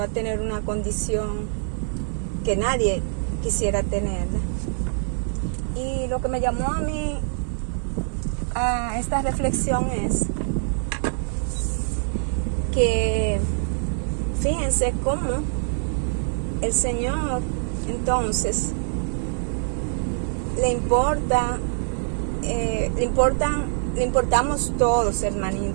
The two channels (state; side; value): silent; left; digital silence